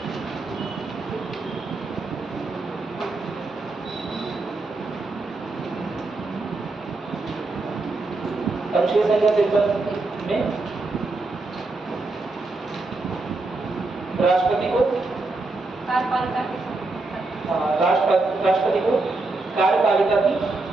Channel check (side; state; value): left; quieter; 3.4 dB